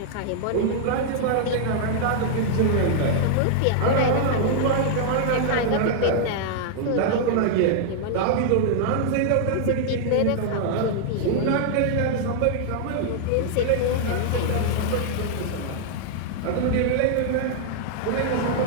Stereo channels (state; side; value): different; both; correlation -0.01